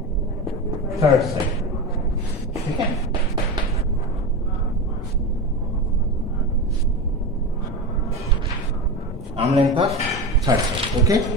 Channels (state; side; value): normal; both; correlation 0.23